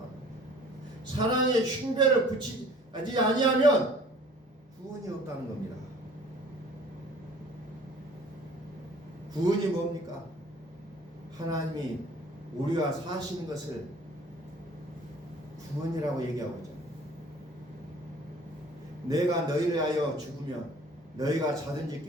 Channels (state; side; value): normal; both; correlation 0.51